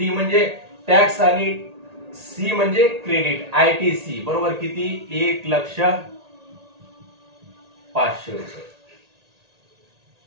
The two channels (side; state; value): left; late; 1.8 ms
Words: म्हणजे टॅक्स आणि सी म्हणजे क्रेडिट. आयटीसी बरोबर किती, 1,05,000 रुपये.